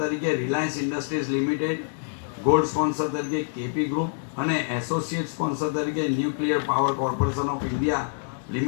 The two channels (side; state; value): right; silent; 61 dB below the other